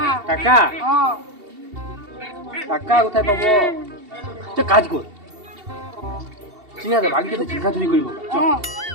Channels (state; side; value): late; left; 2.7 ms